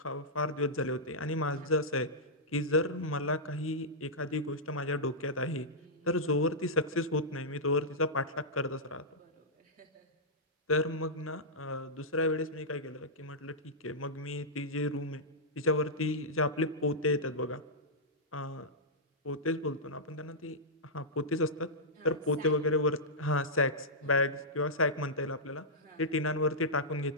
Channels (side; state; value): both; normal; correlation -0.12